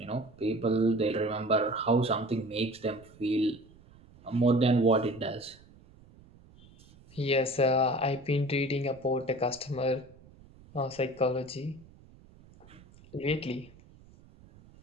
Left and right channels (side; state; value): right; noise; rumble, 24 dB below the sound